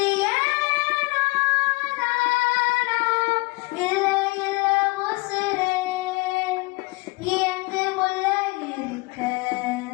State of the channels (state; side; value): quieter; right; 25.0 dB